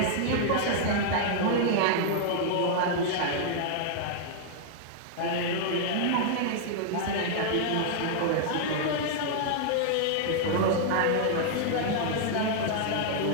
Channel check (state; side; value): different; both; correlation -0.01